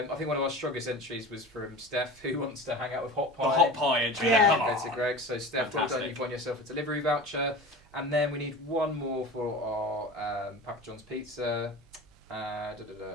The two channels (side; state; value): both; normal; correlation 0.34